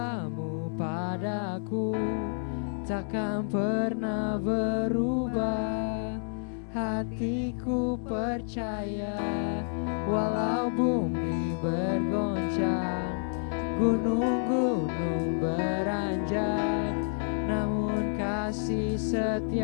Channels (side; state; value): right; silent; 58 dB below the other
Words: padaku takkan pernah berubah. Hatiku percaya walau bumi bergoncang, gunung-gunung beranjak, namun kasih